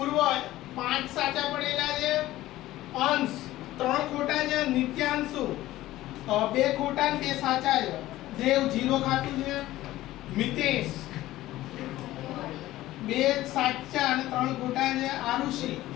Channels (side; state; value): right; quieter; 15.8 dB